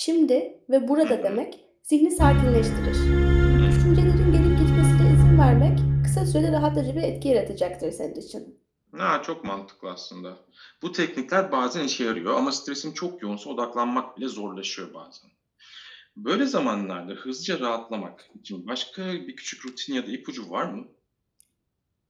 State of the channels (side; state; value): both; identical; correlation 1.00